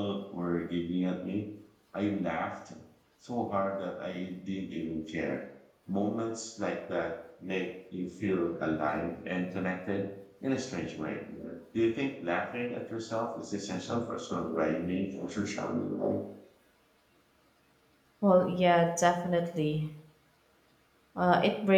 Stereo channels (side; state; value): both; identical; correlation 1.00